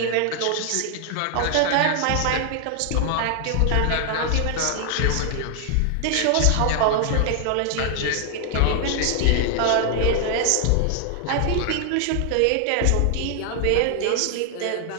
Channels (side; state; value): both; different; correlation 0.00